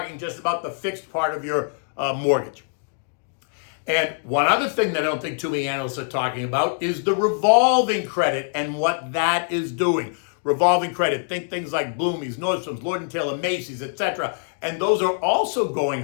just about the fixed part of your mortgage. And one other thing that I don't think too many analysts are talking about is the revolving credit and what that is doing. Revolving credit, think things like Bloomie's, Nordstrom's, Lord & Taylor, Macy's, etc. And those are also going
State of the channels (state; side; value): silent; right; digital silence